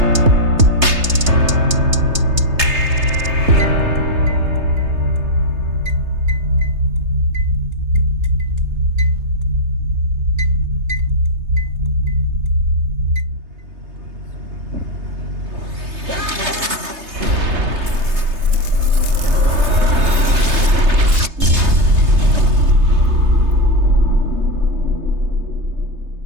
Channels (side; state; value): left; late; 3.3 ms